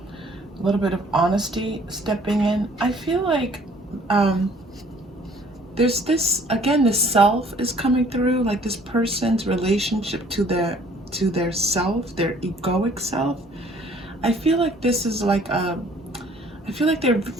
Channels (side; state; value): both; normal; correlation 0.57